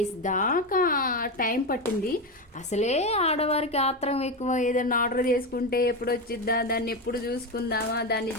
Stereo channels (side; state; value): both; normal; correlation 0.15